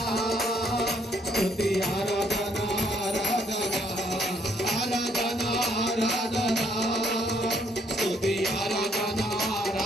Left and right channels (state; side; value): normal; both; correlation 0.68